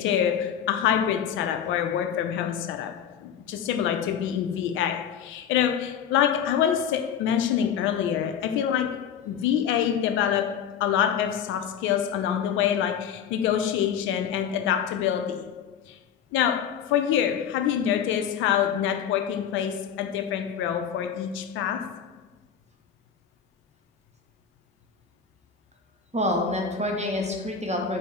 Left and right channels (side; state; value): right; quieter; 8.3 dB